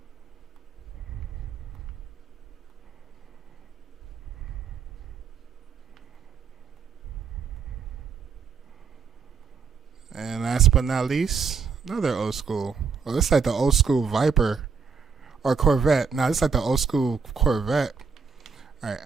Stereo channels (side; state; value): left; quieter; 5.7 dB